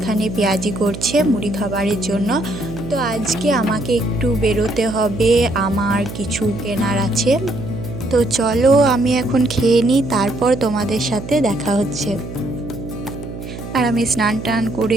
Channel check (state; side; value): noise; right; hum, 10 dB below the sound